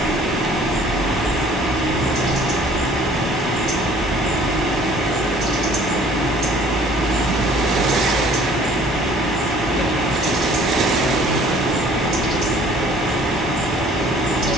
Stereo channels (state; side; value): normal; both; correlation 0.54